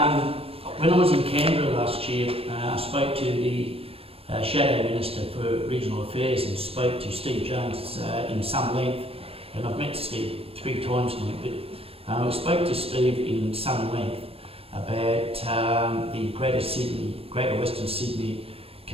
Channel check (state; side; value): late; left; 0.28 ms